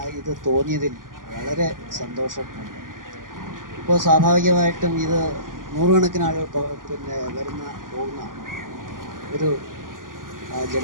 ഇത് തോന്നിയതിൽ വളരെ സന്തോഷമുണ്ട്. ഇപ്പോൾ സ്വാഭാവികമായിട്ടും ഇത് നൂറുകണക്കിന് ആളുകൾ പോകുന്ന ഒരു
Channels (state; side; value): late; left; 0.90 ms